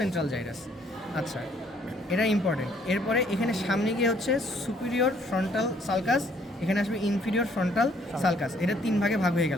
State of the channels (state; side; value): normal; both; correlation 0.64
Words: জাইরাস। আচ্ছা, এটা ইম্পর্টেন্ট। এরপরে এখানে সামনে গিয়ে হচ্ছে সুপিরিয়র ফ্রন্টাল সালকাস, এখানে আসবে ইনফিরিয়র ফ্রন্টাল সালকাস। এটা 3 ভাগে ভাগ হয়ে